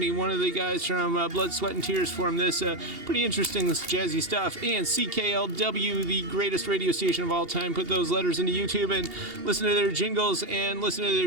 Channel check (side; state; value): left; late; 2.8 ms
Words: One of the guys from Blood, Sweat, and Tears formed this. Pretty interesting jazzy stuff. And CKLW, the greatest radio station of all time, put those letters into YouTube and listen to their jingles and listen to